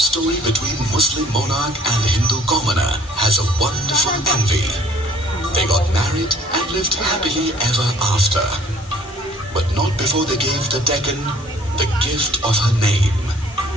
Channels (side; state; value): both; normal; correlation 0.57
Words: between Muslim monarch and Hindu commoner has a wonderful envy. They got married and lived happily ever after, but not before they gave the Deccan the gift of her name.